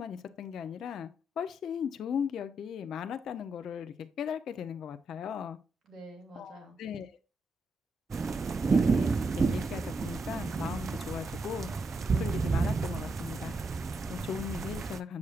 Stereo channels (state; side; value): normal; both; correlation 0.81